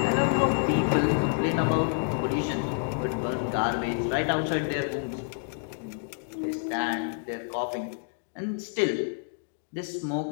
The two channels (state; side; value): silent; right; digital silence